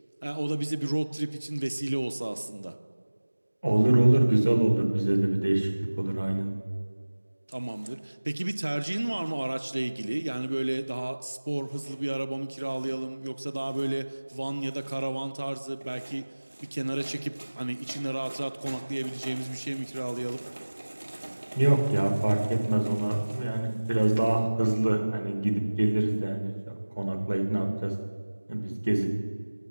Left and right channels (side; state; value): both; inverted; correlation -1.00